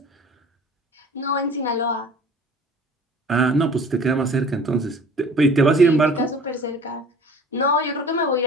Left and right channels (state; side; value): normal; both; correlation 0.45